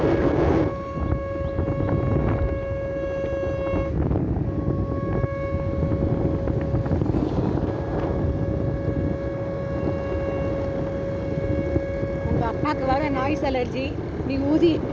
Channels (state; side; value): identical; both; correlation 1.00